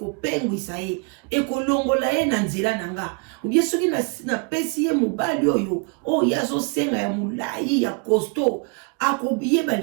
ye ekolongola ye na nzela nanga ubie soki na pesi ye mobali oyo ya zo senga ya mulai ya costaud akobiye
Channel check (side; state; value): left; quieter; 33.8 dB